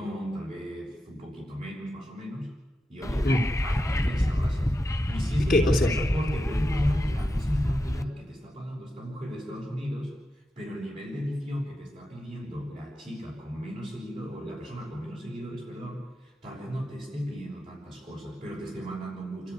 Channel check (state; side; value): normal; both; correlation 0.88